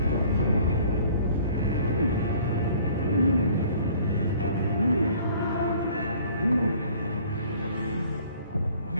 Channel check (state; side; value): inverted; both; correlation -0.53